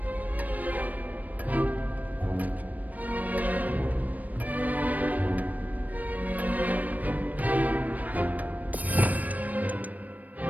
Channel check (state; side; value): late; left; 0.076 ms